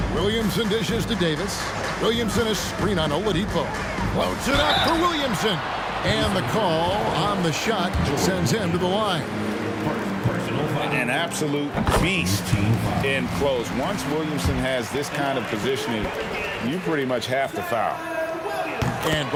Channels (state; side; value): identical; both; correlation 1.00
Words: Williamson dishes to Davis. Williamson a screen on Oladipo. Floats it up for Williamson. And the call on the shot sends him to the line. An absolute beast in close. Once Williamson has this kind of positioning, you pretty much have to foul. And